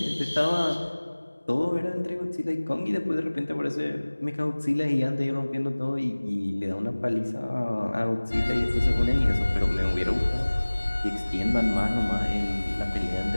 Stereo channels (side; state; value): both; inverted; correlation -1.00